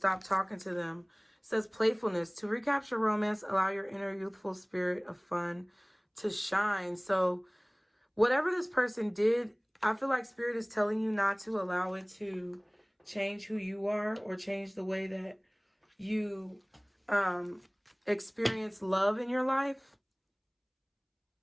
talking to them. It says playfulness. To recapture romance, allow your inner youthful spirit of fun to shine. So whatever this person did, I feel like Spirit is telling you not to allow it to change who you are or change the way that you experience love in your life.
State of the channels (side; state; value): both; identical; correlation 1.00